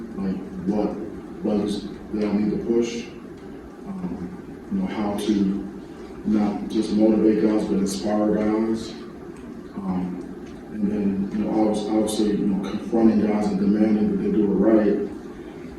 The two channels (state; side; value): identical; both; correlation 1.00